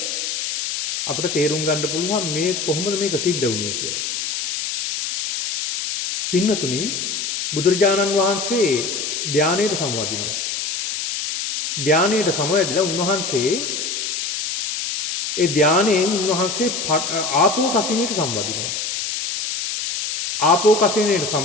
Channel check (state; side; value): noise; left; hiss, 3 dB below the sound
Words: අපිට තේරුම් ගන්න පුළුවන් මේ කොහොමද මේක සිද්ධ වුනේ කියලා. පින්නතුනි බුදුරජාණන් වහන්සේ ධානයට සමවදිනවා. ධානයට සමවැදිලා උන්වහන්සේ ඒ ධානයෙන් උන්වහන්සේ ආපෝ කසිනයට සමවදිනවා. ආපෝ කසිනයට